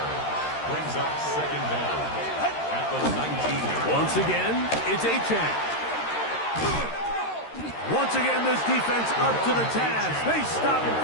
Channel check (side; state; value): right; late; 13 ms